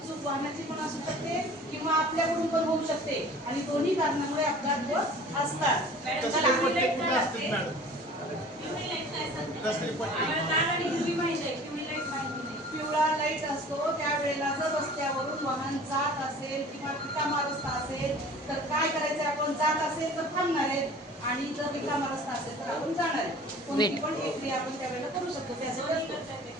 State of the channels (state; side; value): normal; both; correlation 0.45